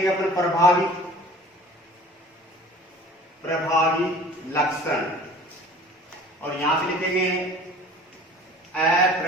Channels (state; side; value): normal; both; correlation 0.46